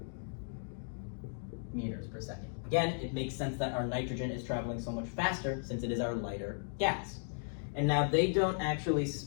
meters per second. Again, it makes sense that our nitrogen is traveling so much faster since it is our lighter gas. And now they don't actually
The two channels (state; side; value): silent; right; digital silence